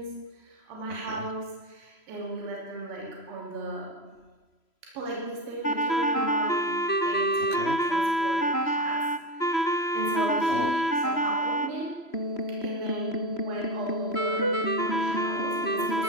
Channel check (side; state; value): right; late; 3.0 ms